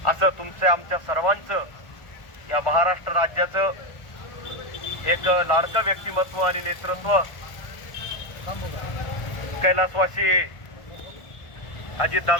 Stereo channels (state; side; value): late; right; 1.4 ms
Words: असं तुमच्या आमच्या सर्वांचं या महाराष्ट्र राज्याचं एक लाडकं व्यक्तिमत्व आणि नेतृत्व कैलासवासी